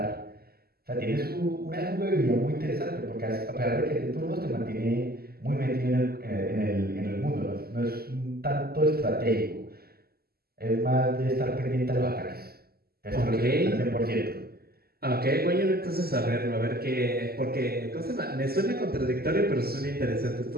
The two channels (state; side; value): late; left; 0.45 ms